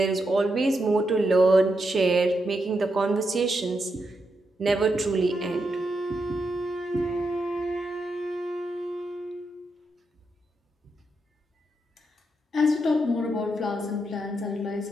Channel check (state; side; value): normal; both; correlation 0.83